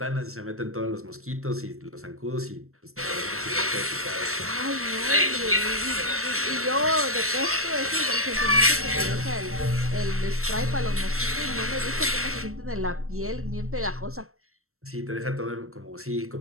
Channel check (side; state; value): left; late; 0.63 ms